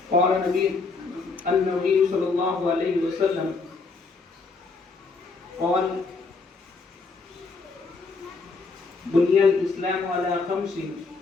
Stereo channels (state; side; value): quieter; right; 4.2 dB